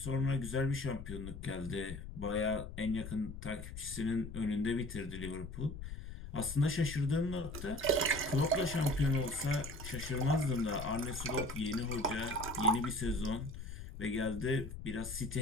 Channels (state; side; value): noise; left; rumble, 10 dB below the sound